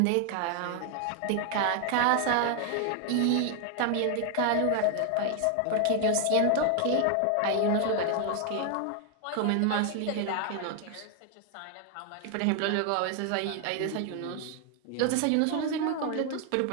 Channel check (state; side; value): different; both; correlation 0.00